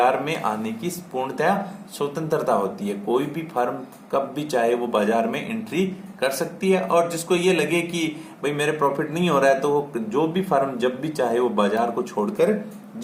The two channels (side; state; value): both; identical; correlation 1.00